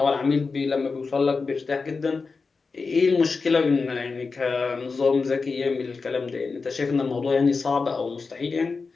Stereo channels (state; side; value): quieter; right; 4.5 dB